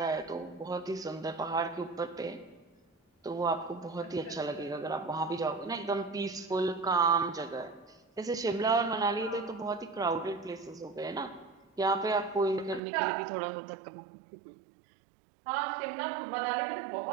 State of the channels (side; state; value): left; drops out; at 12.8 s